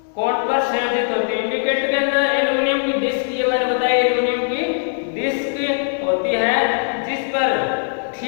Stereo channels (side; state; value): right; silent; 66 dB below the other